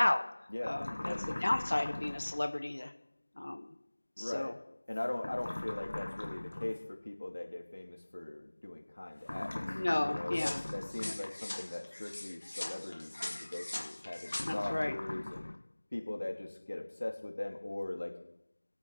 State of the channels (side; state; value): both; inverted; correlation -1.00